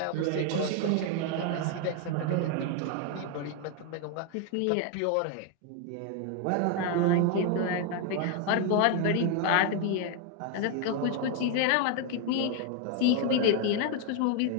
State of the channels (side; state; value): both; different; correlation 0.01